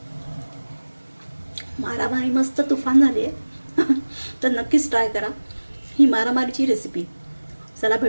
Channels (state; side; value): inverted; both; correlation -1.00